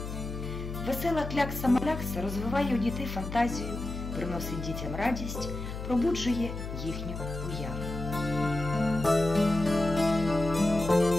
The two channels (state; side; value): noise; left; hum, 7 dB below the sound